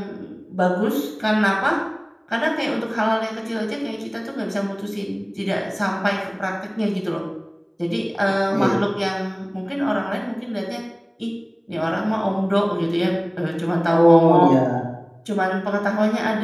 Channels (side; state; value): both; identical; correlation 1.00